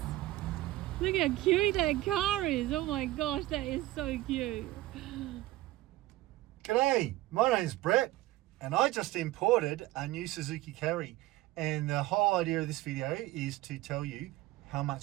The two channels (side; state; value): left; quieter; 17.2 dB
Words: Look how cute that car is. Oh my gosh, that is so cute. G'day, my name's Brett and I just imported a new Suzuki Carry, and the whole idea of this video is to tell you how